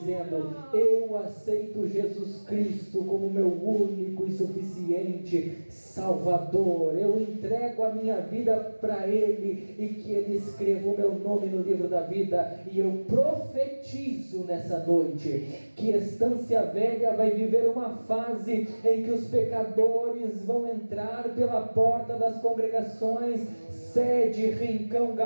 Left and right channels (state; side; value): inverted; both; correlation -1.00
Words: eu aceito Jesus Cristo como meu único e suficiente Salvador. Eu entrego a minha vida para Ele, e que Ele escreva o meu nome no livro da vida. E eu profetizo nessa noite que Estância Velha vai viver uma fase em que os pecadores vão entrar pela porta das congregações, sede, Rincão